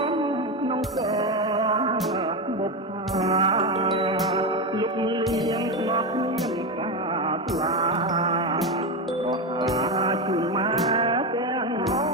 ក្នុងកបុប្ផាលុកលៀងស្នប់មានការស្លាក៏ហាជូនមកទាំង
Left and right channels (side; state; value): both; normal; correlation 0.14